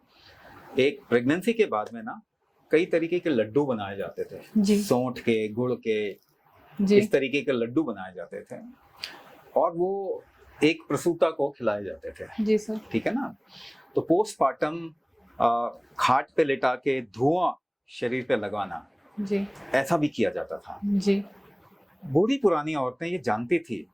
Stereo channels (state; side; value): identical; both; correlation 1.00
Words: एक प्रेगनेंसी के बाद में ना कई तरीके के लड्डू बनाए जाते थे, सौंठ के, गुड़ के, इस तरीके के लड्डू बनाए जाते थे और वो एक प्रसूता को खिलाए जाते थे। जी सर। ठीक है ना। तो पोस्टमार्टम खाट पे लेटा के धुआं शरीर पे लगवाना, जी, ऐसा भी किया जाता था। जी। बूढ़ी पुरानी औरतें ये जानती थी